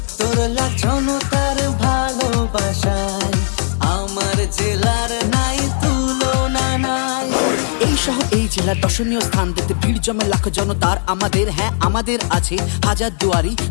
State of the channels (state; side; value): silent; right; digital silence